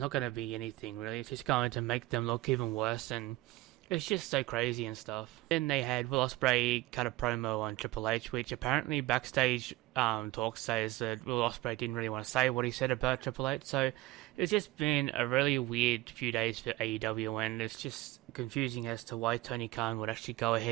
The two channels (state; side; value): quieter; left; 18.7 dB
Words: going to be anything really. It's just going to make them look even worse, and it's just so crazy and stuff. Then they had Will Ospreay cut a promo on Triple H, which apparently backstage talk says that Will Ospreay didn't really want to say what he said about Triple H. So it's just been a really weird few days for AEW, and it's just confusing as to why Tony Khan would actually go